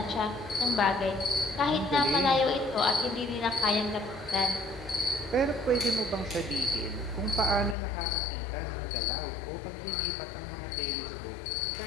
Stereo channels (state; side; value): drops out; right; at 7.8 s